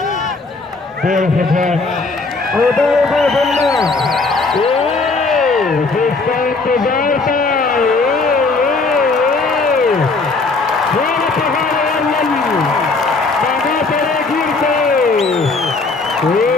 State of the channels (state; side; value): quieter; right; 3.8 dB